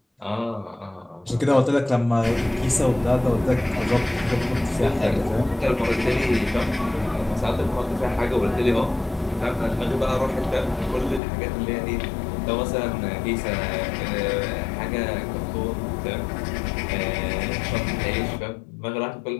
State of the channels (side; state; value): right; drops out; at 11.2 s